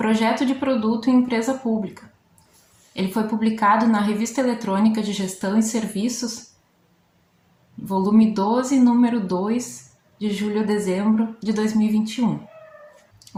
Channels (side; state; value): both; identical; correlation 1.00